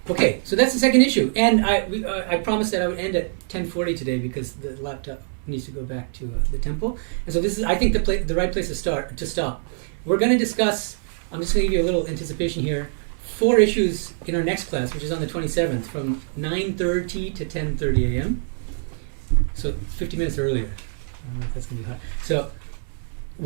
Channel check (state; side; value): silent; left; 63 dB below the other